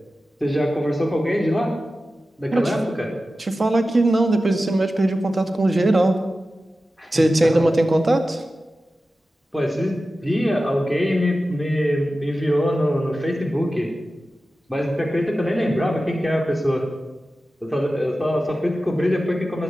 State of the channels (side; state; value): both; normal; correlation 0.94